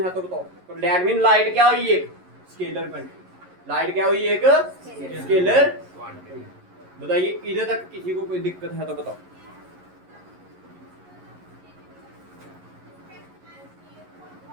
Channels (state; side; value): late; left; 11 ms